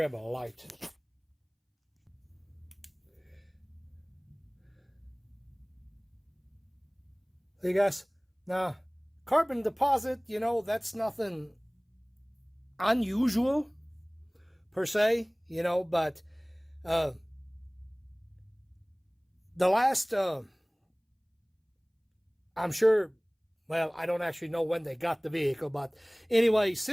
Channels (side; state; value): both; identical; correlation 1.00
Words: a light. See guys, now carbon deposit, you know, that's nothing unusual per se, you know, but the last I'm sure, well, I don't actually know when they got the vehicle, but anyway,